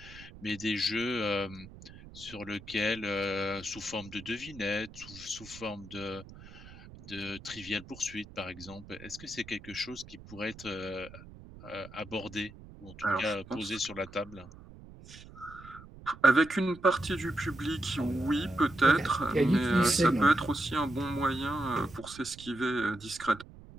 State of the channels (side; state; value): right; noise; rumble, 18 dB below the sound